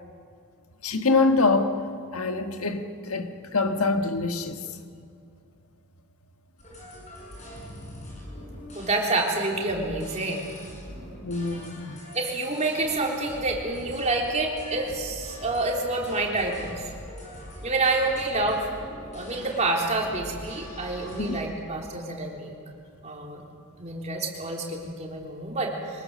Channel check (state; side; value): normal; both; correlation 0.02